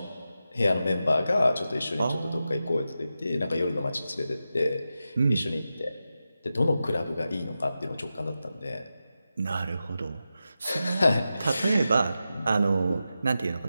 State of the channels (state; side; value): inverted; both; correlation -0.91